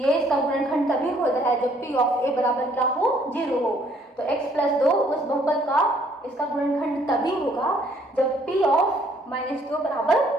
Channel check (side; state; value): both; normal; correlation 0.63